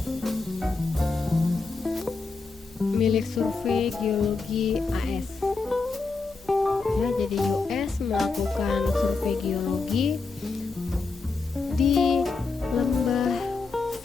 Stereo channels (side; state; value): right; quieter; 4.1 dB